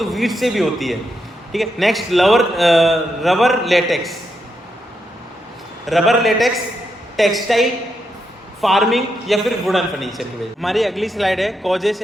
वीट से भी होती है। ठीक है, next rubber latex, textile, farming या फिर वुडन फर्नीचर की वजह। हमारी अगली स्लाइड है causes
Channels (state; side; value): normal; both; correlation 0.82